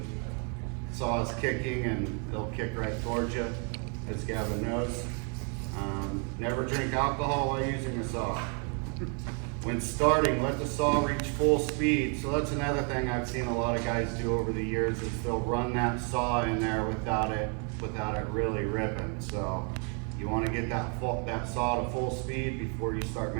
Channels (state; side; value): quieter; left; 38.6 dB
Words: saws kicking, and they'll kick right towards you, as Gavin knows. Never drink alcohol while using a saw. When starting, let the saw reach full speed. So that's another thing I've seen a lot of guys do over the years is they'll run that saw in there without it really ripping. So you want to get that saw to full speed before you start